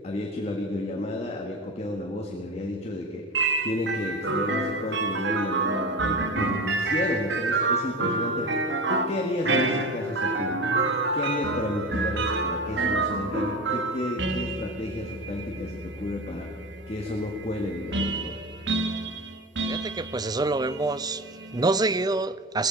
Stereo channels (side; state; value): both; normal; correlation 0.28